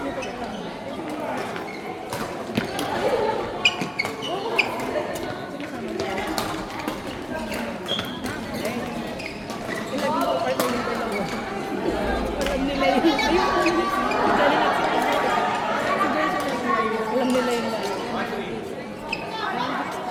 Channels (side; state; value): both; identical; correlation 1.00